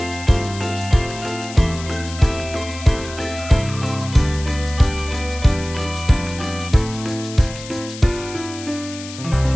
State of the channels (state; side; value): noise; left; hiss, 14 dB below the sound